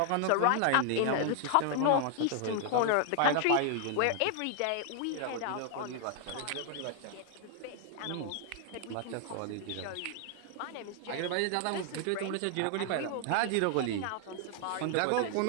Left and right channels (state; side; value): different; both; correlation 0.00